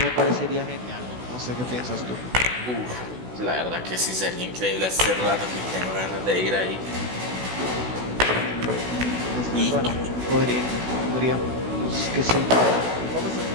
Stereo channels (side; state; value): left; late; 16 ms